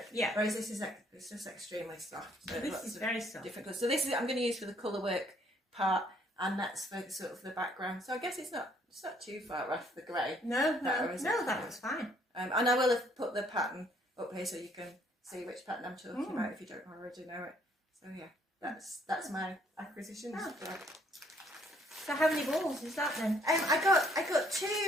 Yeah. Whereas this is it's just extremely soft. So this is very soft. Different colours. So this is I'm going to use for the colour work part, and that's for sort of the background. So I guess it's not too far off the grey. No, that was fine. And I will have put the pattern up here so you can see which pattern I'm talking about if you don't already know it. So yeah, that's my acquisitions. So how many balls is that then? I got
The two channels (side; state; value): both; normal; correlation 0.65